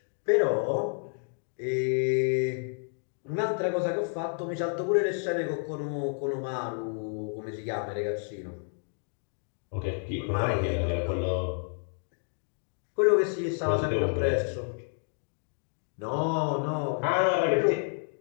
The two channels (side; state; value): right; silent; 58 dB below the other